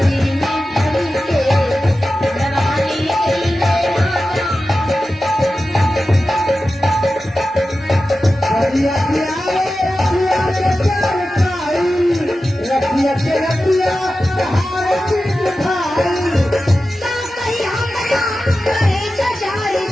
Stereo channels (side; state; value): both; normal; correlation 0.93